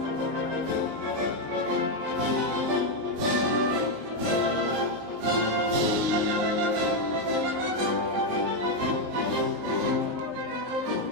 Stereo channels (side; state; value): left; late; 19 ms